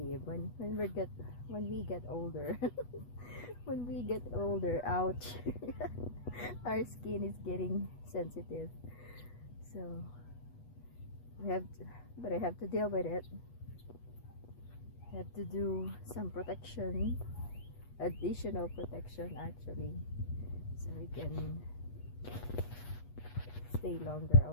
when we get older. When we get older, ouch. Our skin is getting sensitive. So but I have to deal with it. I have to do some protection, additional protection actually, so I can stay longer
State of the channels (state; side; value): late; right; 8.3 ms